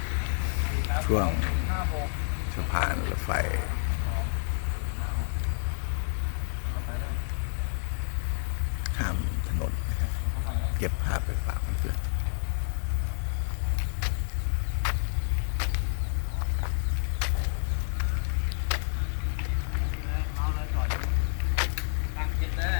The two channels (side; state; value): right; silent; digital silence